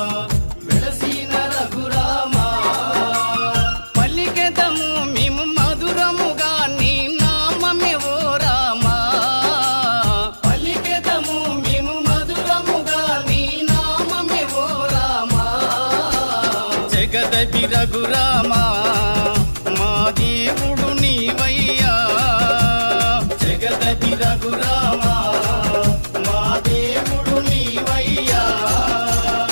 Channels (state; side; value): inverted; both; correlation -1.00